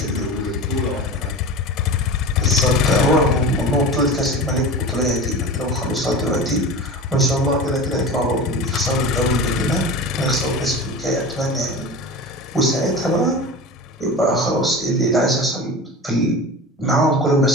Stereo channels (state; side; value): normal; both; correlation 0.30